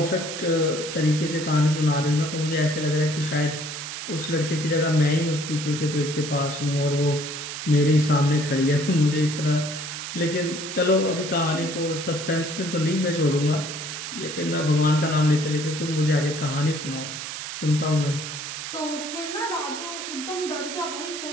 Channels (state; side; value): noise; right; hiss, 7 dB below the sound